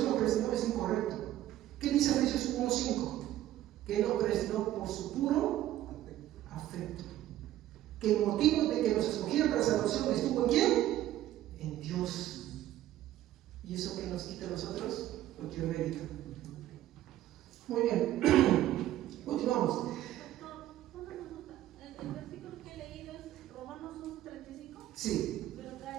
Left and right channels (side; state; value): left; quieter; 13.5 dB